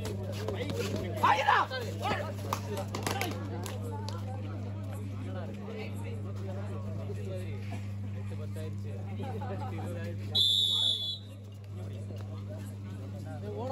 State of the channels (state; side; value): identical; both; correlation 1.00